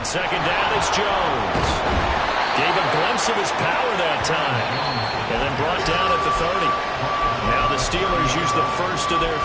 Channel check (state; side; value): identical; both; correlation 1.00